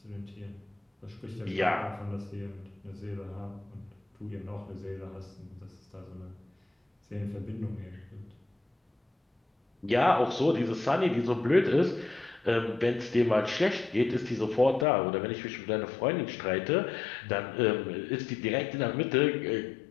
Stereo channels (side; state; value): right; drops out; at 14.9 s